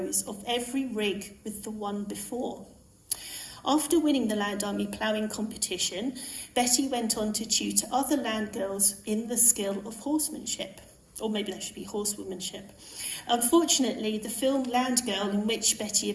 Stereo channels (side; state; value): both; identical; correlation 1.00